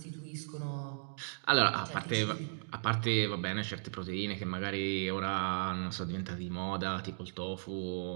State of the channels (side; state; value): left; silent; digital silence